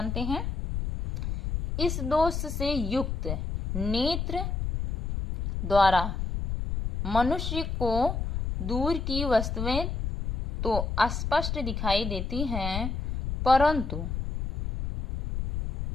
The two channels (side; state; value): left; noise; rumble, 3 dB below the sound